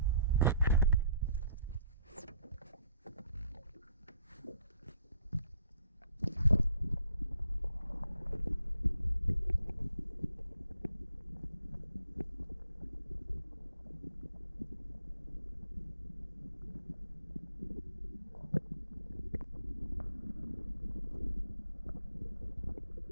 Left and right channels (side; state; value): both; inverted; correlation -0.62